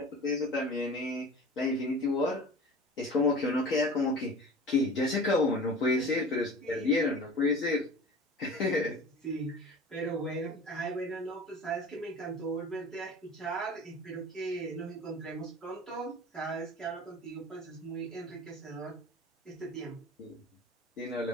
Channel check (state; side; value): normal; both; correlation 0.39